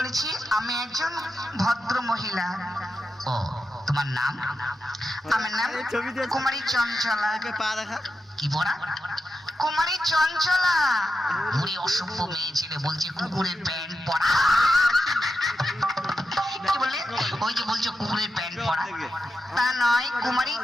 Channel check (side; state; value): both; normal; correlation 0.89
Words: আমি একজন ভদ্র মহিলা। ও তোমার নাম? আমার নাম কুমারী চঞ্চলা। কি পড়া? কুমারী চঞ্চলা। বুড়ি অসভ্য মেয়ে ছেলে বলছে কুকুরের প্যান্ট পরা। কি বললে? ওই যে বলছো কুকুরের প্যান্ট পরা, তা নয়, কুমারী